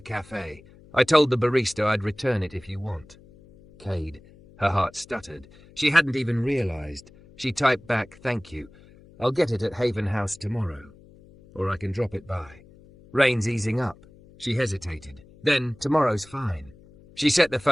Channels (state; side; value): noise; left; hum, 24 dB below the sound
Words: I told the barista I'd return it if you want. Kade. Her heart stuttered. She hadn't even realized. She typed back, "Thank you. I'll get it at Haven House tomorrow. Or I can drop it by." Rain's easing up. She hesitated. Then, tomorrow's fine. She set the